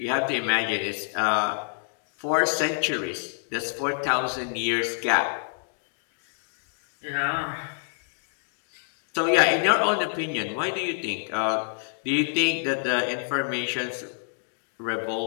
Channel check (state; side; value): silent; right; digital silence